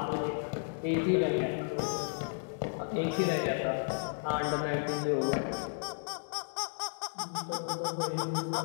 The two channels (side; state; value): right; silent; digital silence